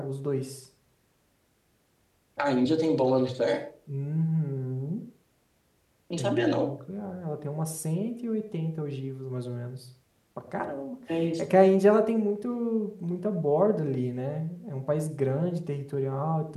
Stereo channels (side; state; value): both; identical; correlation 1.00